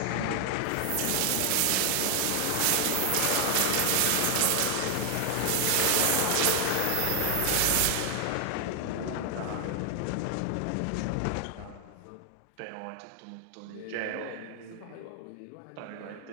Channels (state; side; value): different; both; correlation 0.00